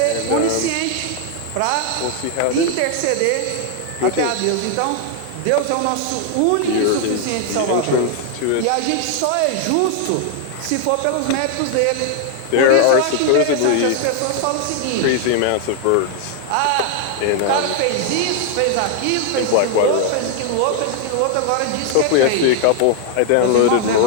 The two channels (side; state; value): both; different; correlation 0.00